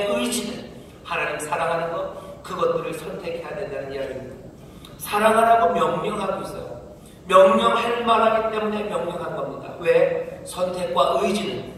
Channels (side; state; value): both; identical; correlation 1.00